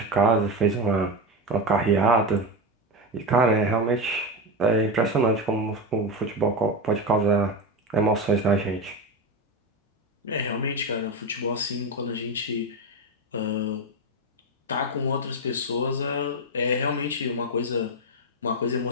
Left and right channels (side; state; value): both; normal; correlation 0.16